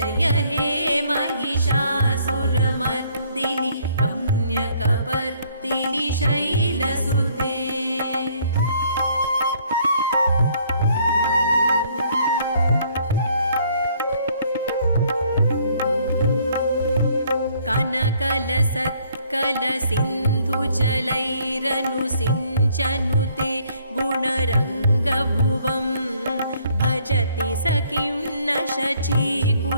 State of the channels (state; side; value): inverted; both; correlation -0.63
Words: हे महिषासुरमर्दिनि रम्यकपर्दिनि शैलसुते। कनकलसत्कलसिन्धुजलैरनुसिञ्चनुते गुणरङ्गभुवं भजति स किं न